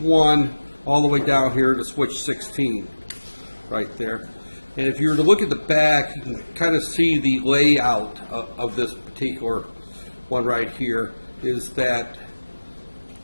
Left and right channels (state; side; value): inverted; both; correlation -1.00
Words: all the way down here to switch 16 right there. And if you were to look at the back, you can kind of see the layout of this particular one right here. Is that